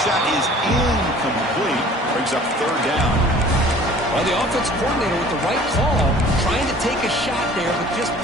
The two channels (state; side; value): normal; both; correlation 0.49